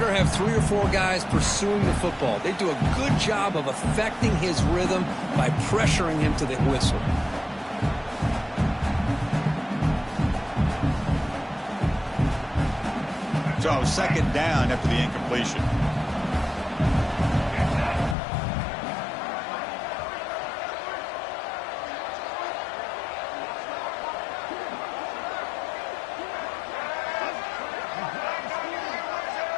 have 3 or 4 guys pursuing the football. They do a good job of affecting his rhythm by pressuring him to the whistle. So second down after the incompletion.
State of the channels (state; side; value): drops out; right; at 18.2 s